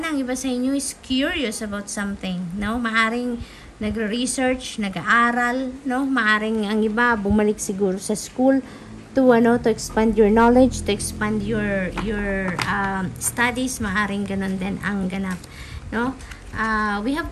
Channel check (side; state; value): both; identical; correlation 1.00